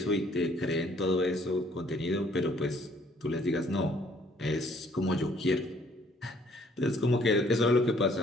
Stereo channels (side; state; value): both; normal; correlation 0.62